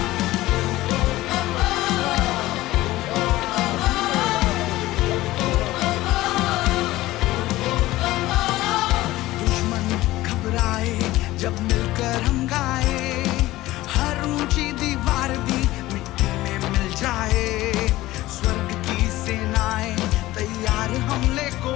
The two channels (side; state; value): right; quieter; 17.2 dB